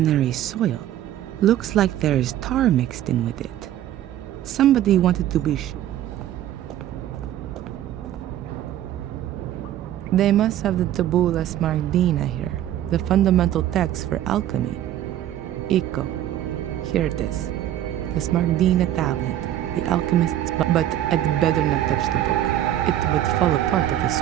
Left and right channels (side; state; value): left; quieter; 12.2 dB